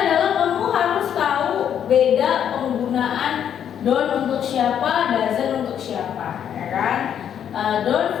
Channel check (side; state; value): right; quieter; 9.1 dB